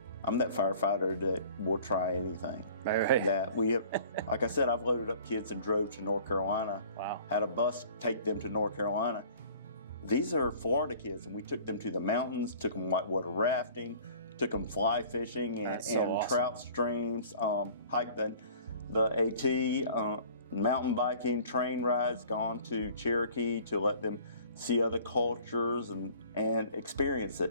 I'm that firefighter that will try anything. Right. That we have, like I said, I've loaded up kids and drove to North Carolina. Wow. Had a bus take them to North Carolina. These are Florida kids, and we took them to the mountains, took them whitewater rafting, took them fly fishing and awesome. Trout streams, hiked the AT, mountain biking, train rides, gone to Cherokee to let them see other cultures and experience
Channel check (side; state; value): both; inverted; correlation -0.49